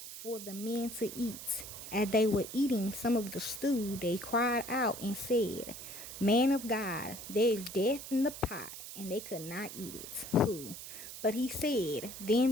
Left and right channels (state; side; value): noise; right; hiss, 11 dB below the sound